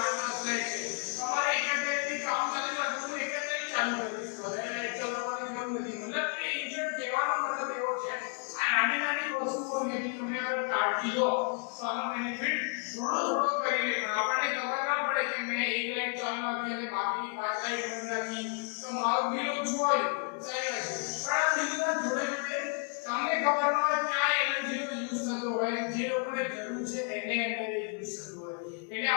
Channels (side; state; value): right; quieter; 39.5 dB